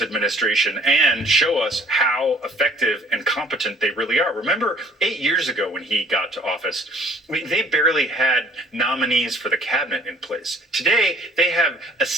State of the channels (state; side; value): normal; both; correlation 0.55